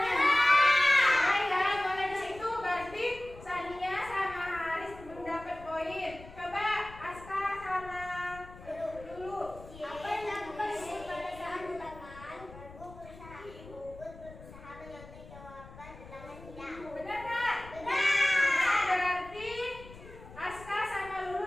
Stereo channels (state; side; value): noise; left; rumble, 17 dB below the sound